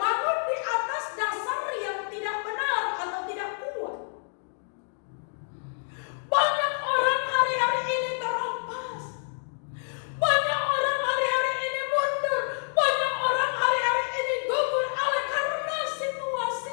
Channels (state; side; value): silent; right; digital silence